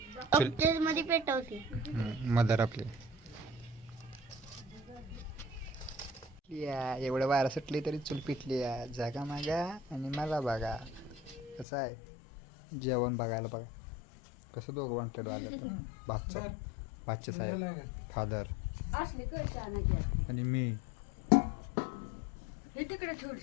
मध्ये पेटवते मदर आपली. या एवढं वारा सुटली तरी चूल पिटली या. जागा मागा आणि मला बघा कसं आहे जेवण बघायला. बघा कसं दोघं वॉन्टेड आलं तर भाचे साहेब, फादर आणि मी.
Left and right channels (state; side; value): drops out; right; at 11.7 s